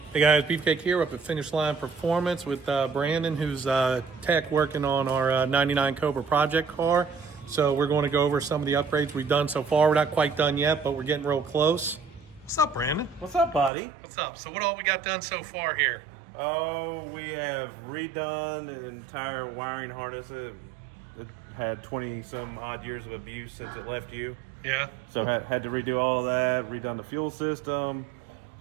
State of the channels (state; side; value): drops out; left; at 13.7 s